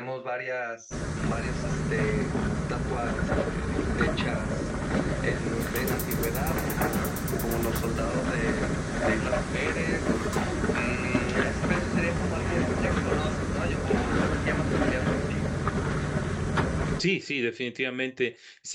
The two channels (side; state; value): both; identical; correlation 1.00